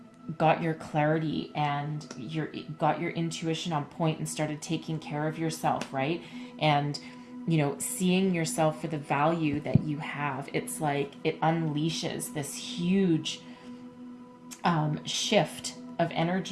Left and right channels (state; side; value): identical; both; correlation 1.00